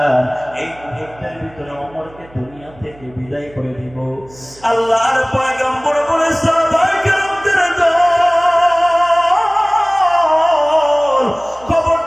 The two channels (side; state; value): right; noise; hum, 24 dB below the sound